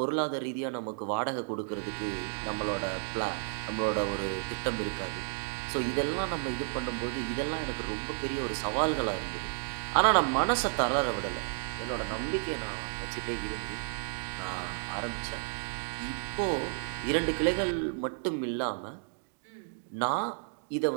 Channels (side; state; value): left; silent; digital silence